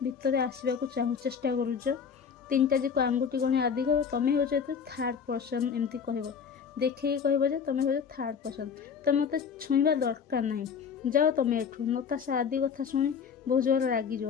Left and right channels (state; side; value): quieter; right; 6.7 dB